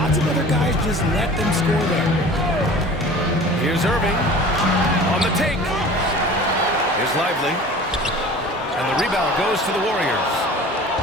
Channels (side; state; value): both; normal; correlation 0.42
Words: of other guys just let them score there. Here's Irving on the take. Here's Lively. And the rebound goes to the Warriors.